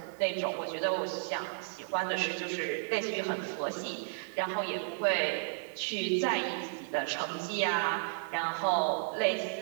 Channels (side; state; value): left; silent; digital silence